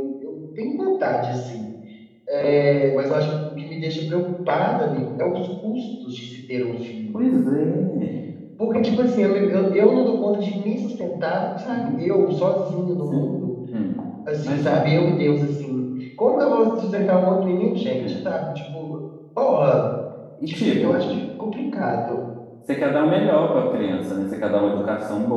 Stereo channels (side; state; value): both; identical; correlation 1.00